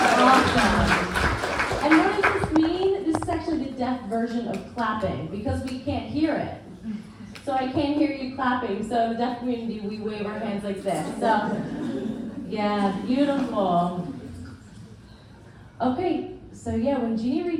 awesome. And what does this mean? This is actually the deaf version of clapping because we can't hear it. So I can't hear you clapping. So in the deaf community, we wave our hands like this. So, yeah, beautiful. Okay, so yeah, when Jeannie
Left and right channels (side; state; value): both; identical; correlation 1.00